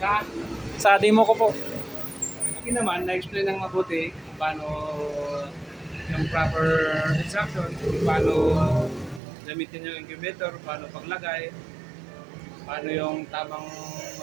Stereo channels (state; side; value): drops out; left; at 9.2 s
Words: Sa Sa demo ko po. akin naman, na-explain ng mabuti kung paano yung proper instruction, kung paano gamitin yung incubator, paano paglagay, paano yung tamang